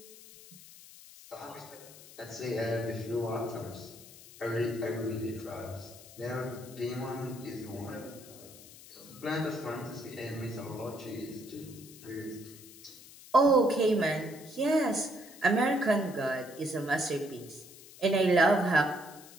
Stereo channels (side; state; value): left; noise; hiss, 19 dB below the sound